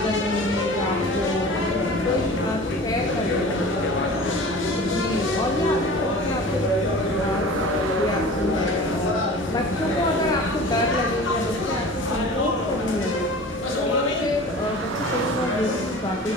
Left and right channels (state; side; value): normal; both; correlation 0.39